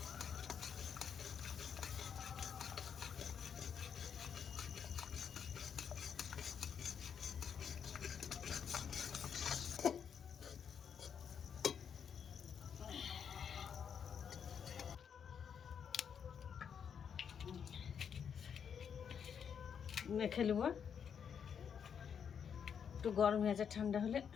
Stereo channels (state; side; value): quieter; right; 7.5 dB